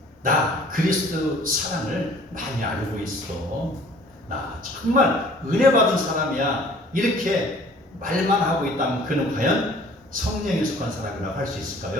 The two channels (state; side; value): normal; both; correlation 0.52